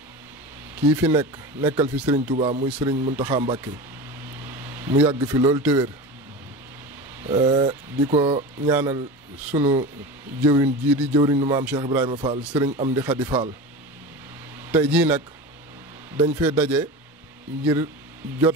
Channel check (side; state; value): both; normal; correlation 0.29